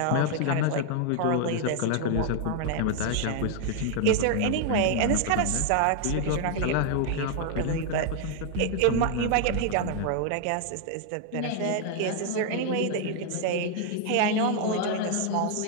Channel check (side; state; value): both; different; correlation 0.00